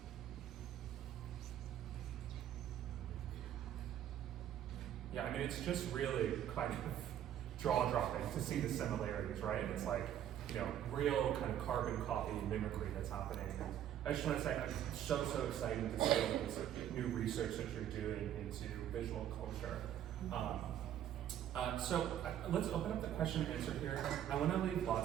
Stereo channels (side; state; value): left; quieter; 10.8 dB